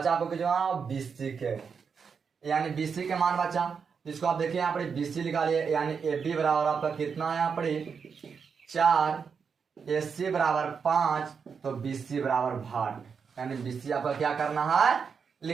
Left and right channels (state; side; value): quieter; left; 6.1 dB